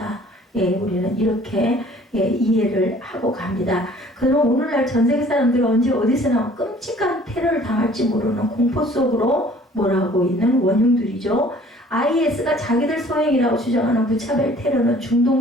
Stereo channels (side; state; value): both; normal; correlation 0.53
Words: 우리는 이렇게 이해를 하고 갑니다. 그럼 오늘날 전 세계 사람들은 언제 어디서나 끔찍한 테러를 당할지 모르는 공포 속으로 몰아가고 있는 원흉들이죠. IS가 자기들 소행이라고 주장하는 무차별 테러는